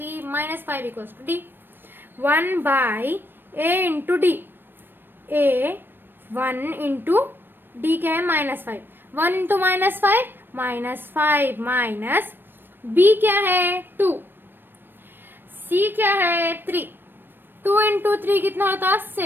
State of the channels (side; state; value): left; late; 0.096 ms